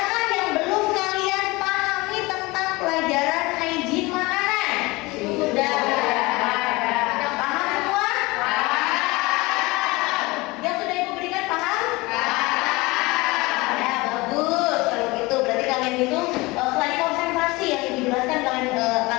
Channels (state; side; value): quieter; right; 22.8 dB